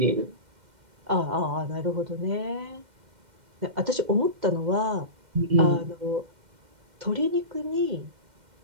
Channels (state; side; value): late; left; 2.1 ms